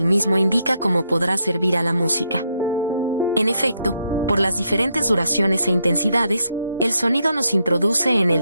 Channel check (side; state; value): both; inverted; correlation -0.78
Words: mismo indica cómo podrá servir a la música. En efecto, por las diferentes duraciones e intensidades, el sonido nos introduce en